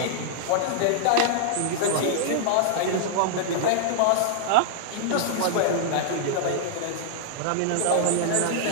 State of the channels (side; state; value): both; different; correlation -0.01